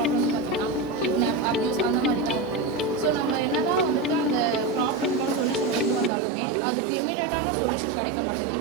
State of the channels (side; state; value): left; drops out; at 6.1 s